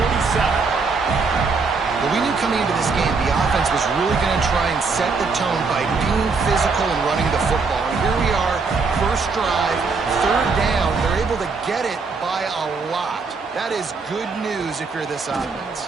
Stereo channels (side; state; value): left; quieter; 4.5 dB